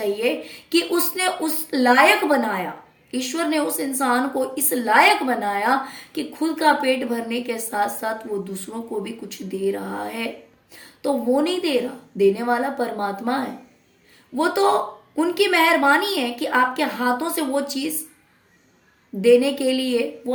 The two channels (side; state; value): both; identical; correlation 1.00